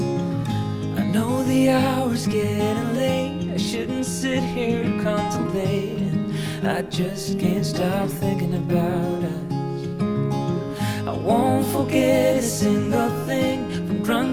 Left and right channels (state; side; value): identical; both; correlation 1.00